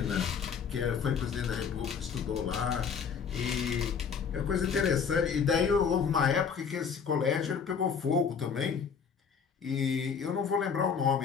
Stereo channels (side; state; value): right; quieter; 6.5 dB